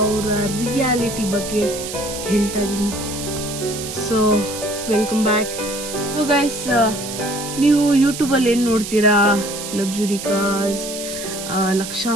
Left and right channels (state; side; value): noise; right; hiss, 8 dB below the sound